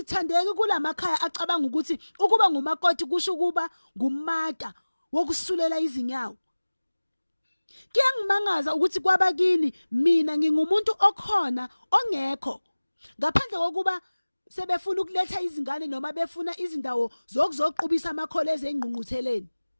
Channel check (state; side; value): inverted; both; correlation -1.00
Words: kulamakhaya acabanga ukuthi ukuba ngumakoti kusho ukuba ngumata wokusulela izinyawo. Kuyangimangaza ukuthi kwabakini mina ngingumuntu okhona ongekho. Ngaphandle kokuba sebefuna ukuletha izingane noma befuna izindawo zokuzoqubisa amakholezi engqungqutheleni.